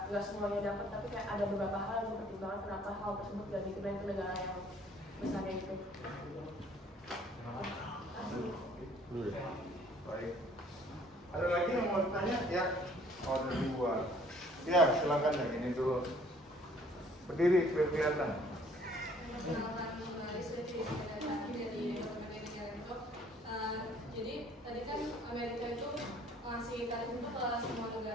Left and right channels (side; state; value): both; normal; correlation 0.58